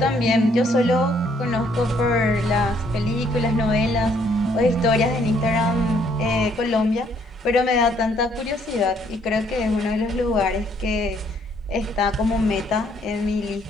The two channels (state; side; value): normal; both; correlation 0.67